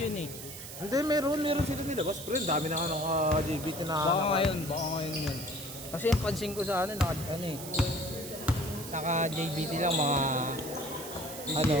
eh. Hindi, meron sila nilabas. Pre, dami na nga ng JBT na Baka ngayon yun. Kasi yung pansin ko sa ano, ano eh. Naka JBT lang mga ano,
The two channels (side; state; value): right; noise; hiss, 11 dB below the sound